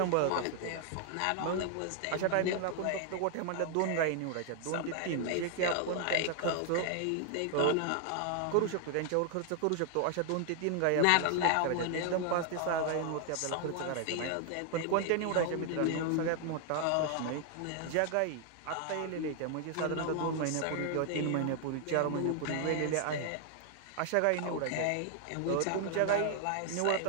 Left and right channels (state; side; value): different; both; correlation 0.00